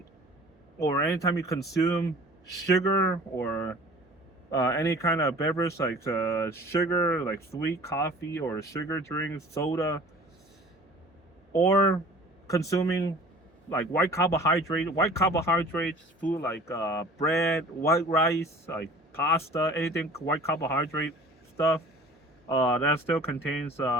or anytime you consume sugar or any kind of beverage like sugar, like sweet coffee or sugar drinks, soda, or consuming like white carbohydrates food like bread, white rice, like pasta, anything white carbohydrate stuff, that still contains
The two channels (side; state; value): both; normal; correlation 0.46